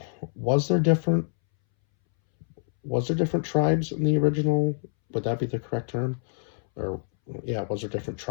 Was there different was there different tribes in the original? Would that be the correct term? Or yeah, was there different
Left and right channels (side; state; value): right; silent; 61 dB below the other